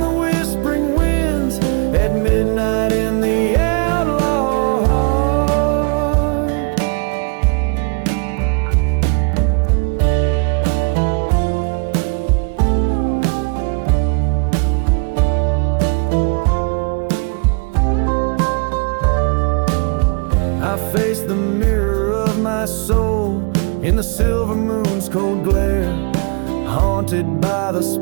whispering winds. At midnight in the outlaw heart. I face the mirror of my soul in the silver moon's cold glare, haunted by the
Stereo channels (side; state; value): left; quieter; 35.2 dB